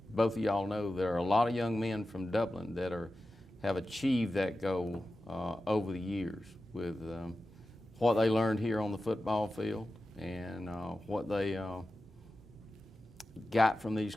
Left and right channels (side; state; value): both; normal; correlation 0.93